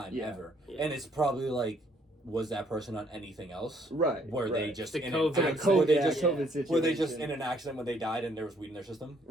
ever, and it's probably like. Was that person on anything else? Right. They just in COVID situation. Were they just in an accident when they died and there was weed in their system?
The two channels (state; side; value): normal; both; correlation 0.66